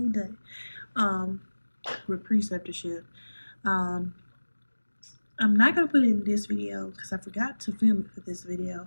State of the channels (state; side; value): inverted; both; correlation -1.00